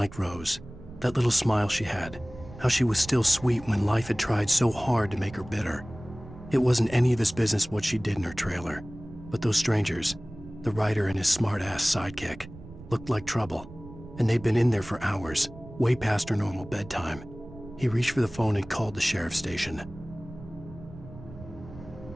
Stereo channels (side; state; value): right; noise; rumble, 16 dB below the sound